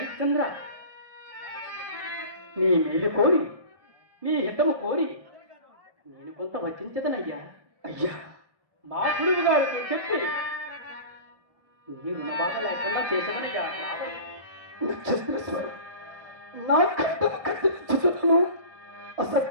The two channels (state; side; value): late; left; 1.1 ms